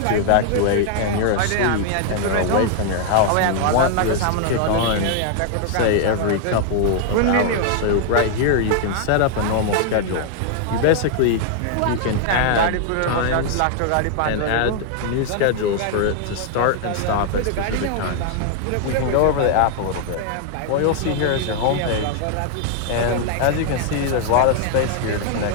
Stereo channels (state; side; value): different; both; correlation 0.00